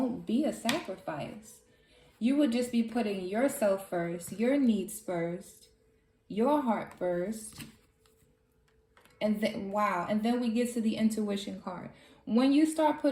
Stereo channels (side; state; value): both; identical; correlation 1.00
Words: be a sacrifice. You would just be putting yourself first, your needs first, your heart first. And then we get to the intuition card. When you start